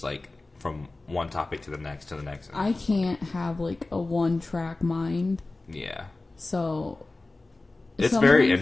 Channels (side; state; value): right; quieter; 3.2 dB